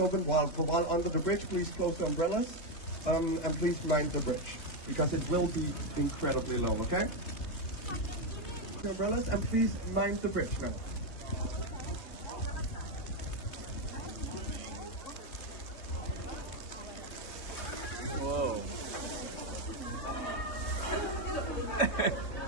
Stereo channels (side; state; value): right; late; 3.3 ms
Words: while under the bridge. Please close the umbrellas and please mind the bridge because it will be incredibly low, okay? The umbrellas and please mind the bridge now. Whoa.